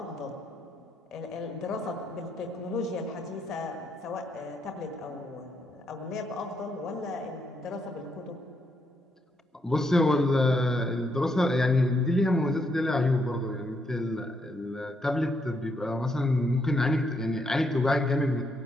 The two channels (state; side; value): normal; both; correlation 0.77